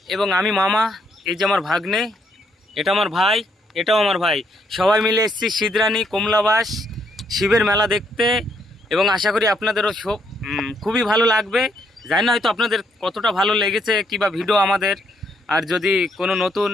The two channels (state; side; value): normal; both; correlation 0.73